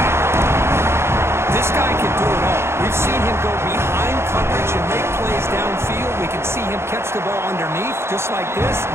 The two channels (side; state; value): left; late; 0.12 ms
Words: This guy can do it all. We've seen him go behind coverage and make plays downfield. We can see him catch the ball underneath, just like this.